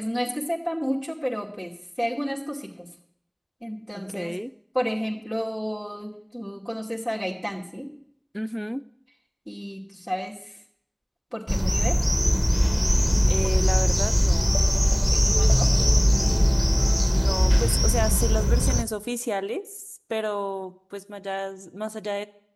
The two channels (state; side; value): identical; both; correlation 1.00